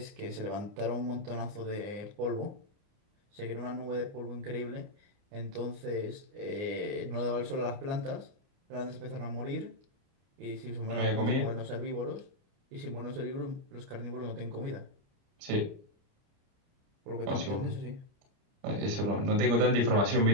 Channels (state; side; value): late; left; 29 ms